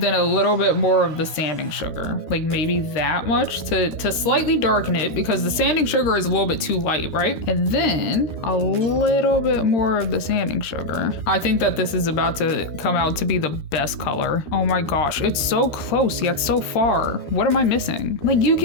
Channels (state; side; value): late; right; 13 ms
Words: a little bit more of the sanding sugar. Like maybe that much to slightly darken it because the sanding sugar is a little bit too light, right? And then a little bit more of the sanding sugar. I think that this is about to come out to be the best color. Oh my gosh, it's so close yet so far. What am I missing? Like you